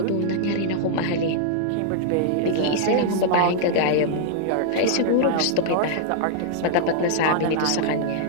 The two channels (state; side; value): different; both; correlation -0.01